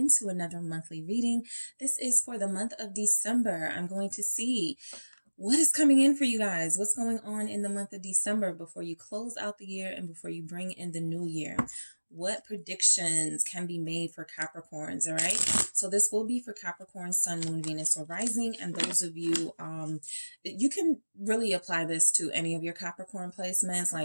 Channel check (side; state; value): both; inverted; correlation -1.00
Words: to another monthly reading. This is for the month of December. I'm going to see what is coming in for you guys. What's going on in the month of December before you close out the year and before you bring in the new year? What predictions can be made for Capricorns, all right? So this will be for Capricorn, Sun, Moon, Venus, or Rising. And those of you, you can really apply this to any of your Capricorn placements.